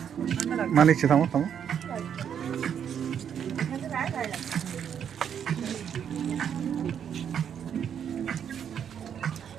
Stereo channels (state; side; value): quieter; left; 8.4 dB